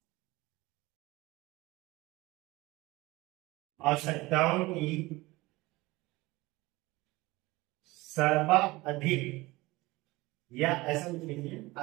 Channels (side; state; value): left; quieter; 20.9 dB